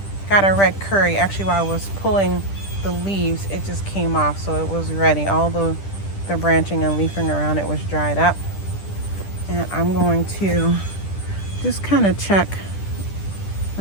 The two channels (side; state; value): right; late; 10 ms